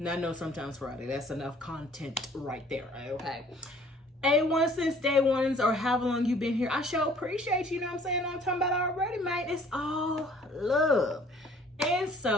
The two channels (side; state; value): both; normal; correlation 0.55